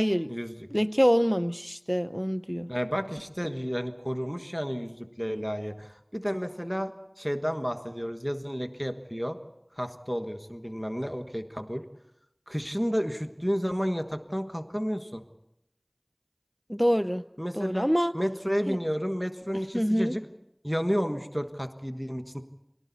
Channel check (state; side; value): identical; both; correlation 1.00